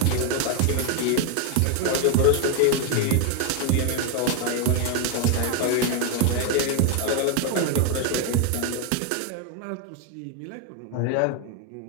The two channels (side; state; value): both; different; correlation 0.01